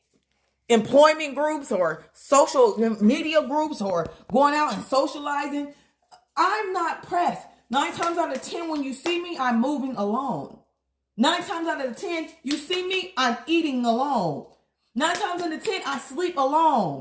employment groups or social media groups or going out and socializing. I'm not pressed. 9 times out of 10, when you see me, I'm moving alone. 9 times out of 10, you see me, I'm eating alone. 9 times out of 10, I sleep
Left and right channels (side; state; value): both; identical; correlation 1.00